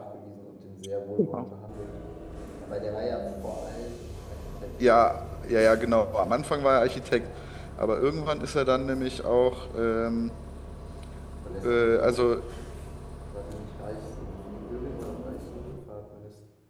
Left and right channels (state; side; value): identical; both; correlation 1.00